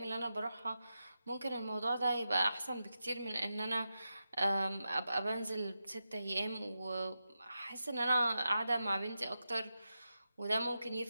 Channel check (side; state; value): both; inverted; correlation -0.89